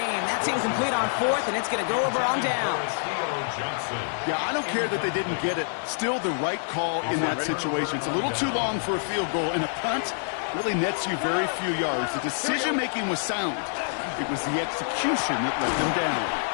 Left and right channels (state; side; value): silent; right; 61 dB below the other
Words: That's incomplete on 4th, and it's going to go over on downs. Yeah, I don't care that they didn't get it. Still the right call in that situation. It's a little too long for a field goal, and a punt really nets you very few yards. The decision-making was sound. It was the execution that let them down.